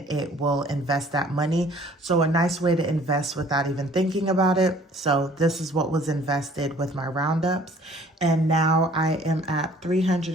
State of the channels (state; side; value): normal; both; correlation 0.54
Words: it will invest that money. So a nice way to invest without even thinking about it. So this is what was invested with my roundups. And now I am at